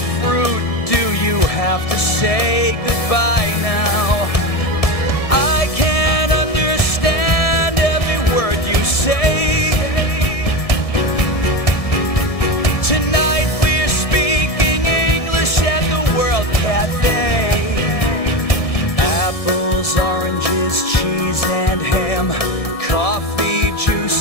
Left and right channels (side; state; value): right; late; 1.7 ms